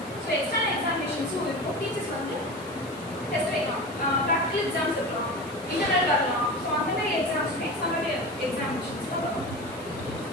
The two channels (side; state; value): left; noise; hiss, 21 dB below the sound